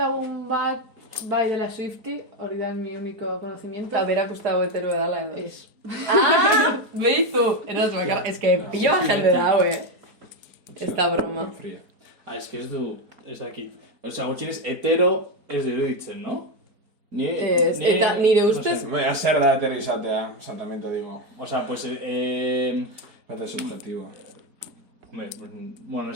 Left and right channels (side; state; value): left; late; 4.8 ms